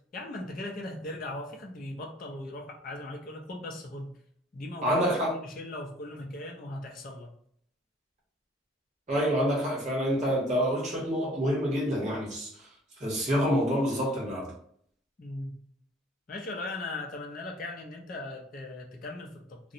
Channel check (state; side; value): normal; both; correlation 0.53